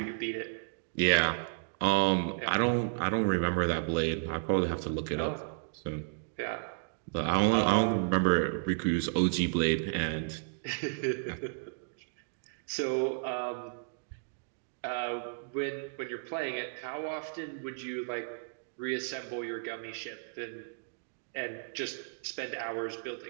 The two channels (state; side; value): silent; left; digital silence